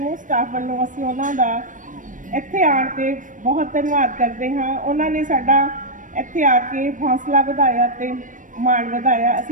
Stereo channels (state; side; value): late; left; 0.38 ms